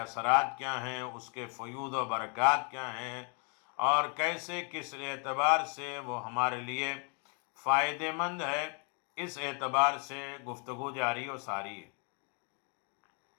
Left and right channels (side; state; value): right; quieter; 37.2 dB